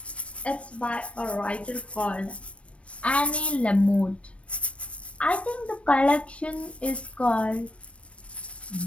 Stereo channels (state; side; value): late; right; 0.062 ms